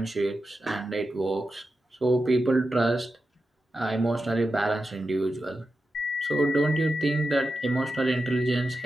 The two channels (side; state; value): both; normal; correlation 0.90